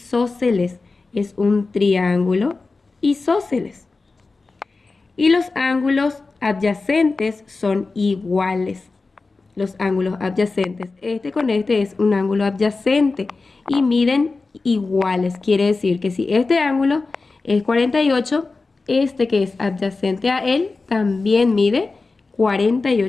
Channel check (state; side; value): quieter; right; 3.8 dB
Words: Es un triángulo isósceles. Y los ángulos adyacentes son iguales. Los ángulos adyacentes. Este con este es un ángulo adyacente y miden iguales. Quiere decir que si este ángulo es 48, este que es adyacente a él también mide